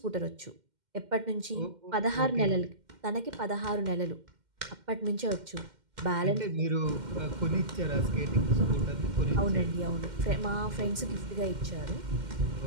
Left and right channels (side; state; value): left; late; 2.1 ms